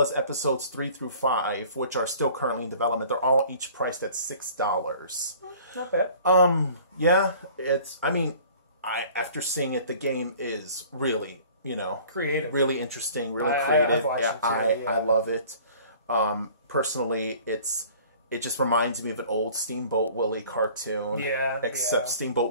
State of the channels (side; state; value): both; inverted; correlation -0.49